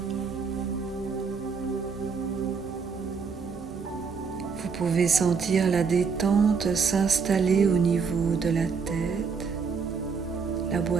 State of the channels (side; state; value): left; quieter; 5.5 dB